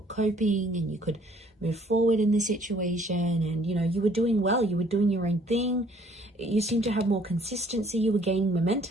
coping and you could move forward in this situation and, you know, you were doing well, you were doing your own thing. You seem to have more consistency, you were gaining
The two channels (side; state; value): both; normal; correlation 0.60